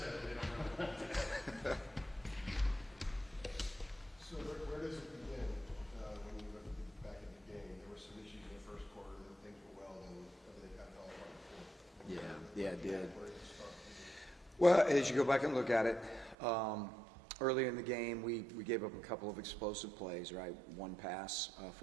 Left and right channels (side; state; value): left; drops out; at 16.4 s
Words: They don't know. So where does it begin when you look back at the game? There were some issues in the first quarter, then things were well, then everything got all apart in the fourth. Yeah, it did. Where does it start? Well, as you go back and look at it, earlier in the game, we gave up a couple of explosive plays, right? One pass,